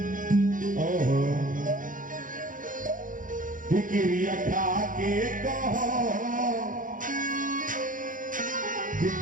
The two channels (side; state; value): left; late; 0.39 ms